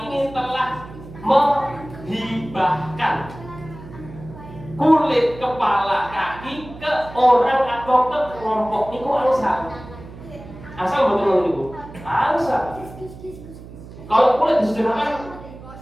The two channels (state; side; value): noise; right; hum, 16 dB below the sound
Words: ini telah menghibahkan kulit, kepala, kaki ke orang atau ke kelompok niku angsal. Asal betul niku. Angsal. Kalau kulit disederhanakan